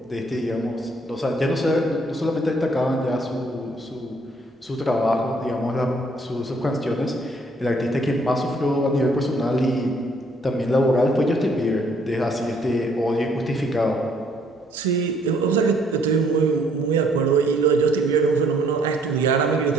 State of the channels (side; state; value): both; normal; correlation 0.65